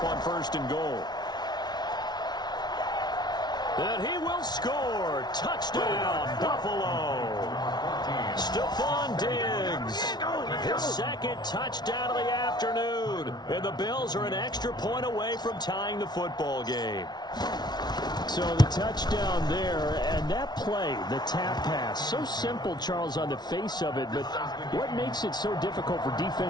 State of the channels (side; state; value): right; late; 0.20 ms